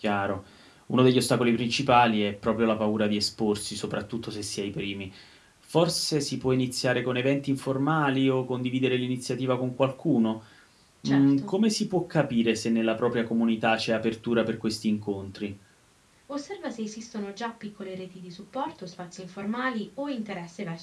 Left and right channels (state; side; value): identical; both; correlation 1.00